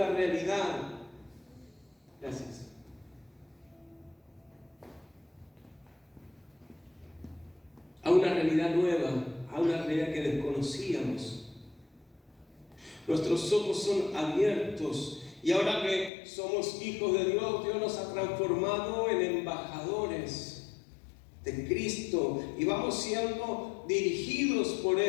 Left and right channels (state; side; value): drops out; right; at 16.1 s